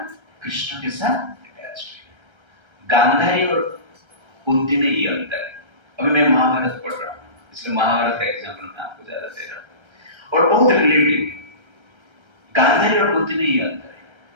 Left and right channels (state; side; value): late; left; 1.3 ms